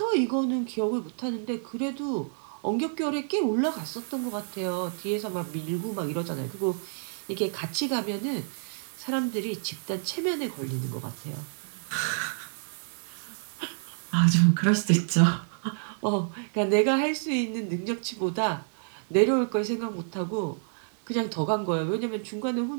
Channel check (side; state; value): left; silent; digital silence